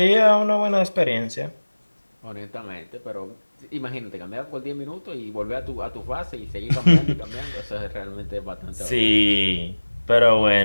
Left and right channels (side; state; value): both; inverted; correlation -1.00